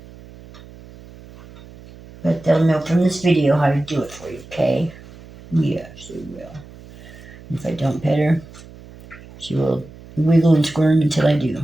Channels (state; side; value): noise; right; hum, 20 dB below the sound